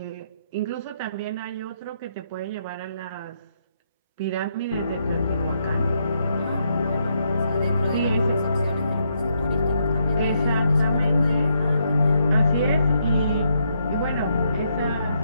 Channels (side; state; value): both; inverted; correlation -0.77